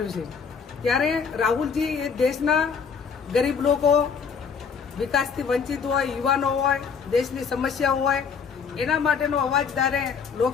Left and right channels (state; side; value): quieter; right; 6.1 dB